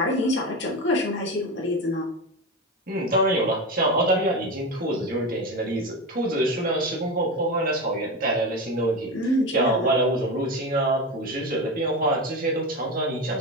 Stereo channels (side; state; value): both; normal; correlation 0.21